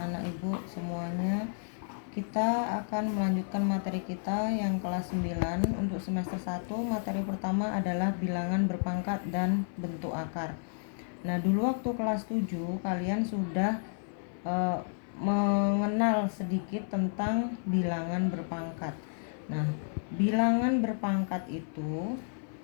ibu semuanya. Kita akan melanjutkan materi kita yang kelas 9 untuk semester 1. Materi pertama adalah bilangan berpangkat dan bentuk akar. Nah, dulu waktu kelas 7 kalian sudah mengenal sedikit tentang bilangan berpangkat. Nah, bilangan berpangkat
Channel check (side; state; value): right; silent; 57 dB below the other